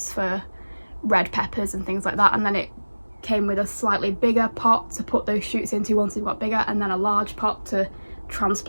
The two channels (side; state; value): both; inverted; correlation -1.00